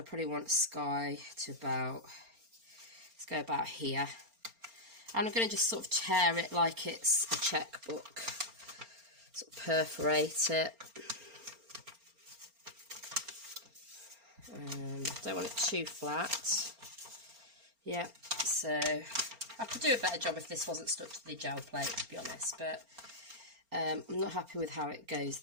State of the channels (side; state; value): left; late; 4.3 ms